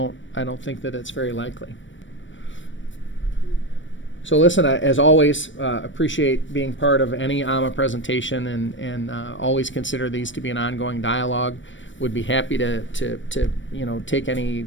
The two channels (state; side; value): late; right; 0.55 ms